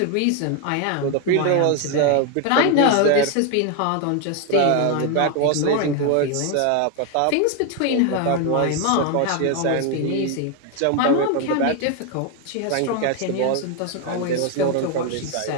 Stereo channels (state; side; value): different; both; correlation 0.01